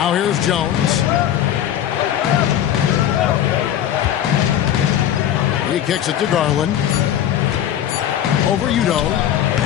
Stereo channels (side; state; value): right; quieter; 10.9 dB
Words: here's Jones. He kicks it to Garland. Over Udo.